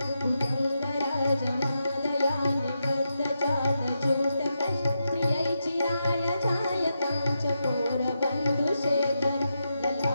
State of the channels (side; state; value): both; inverted; correlation -0.86